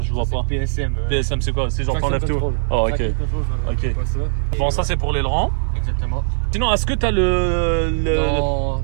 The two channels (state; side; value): silent; left; 61 dB below the other